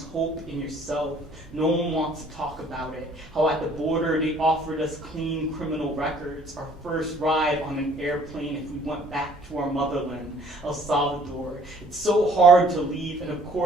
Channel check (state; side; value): normal; both; correlation 0.57